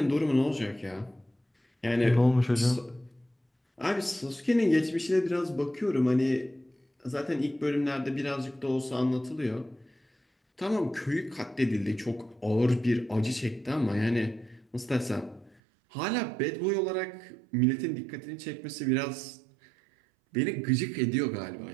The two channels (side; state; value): left; drops out; at 15.6 s